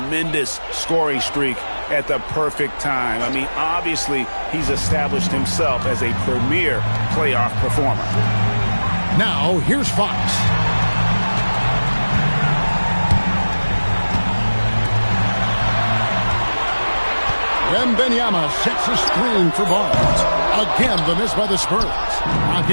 scoring streak at the perfect time. I mean, obviously, he's established himself as a premier playoff performer. Now, here's Fox. Wembanyama sets a screen for Barnes. Again, the miss by the Spurs.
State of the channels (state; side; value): inverted; both; correlation -1.00